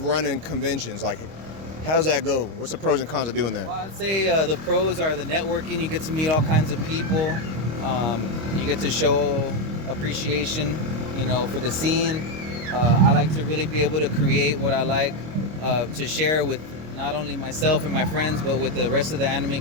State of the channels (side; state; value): left; late; 26 ms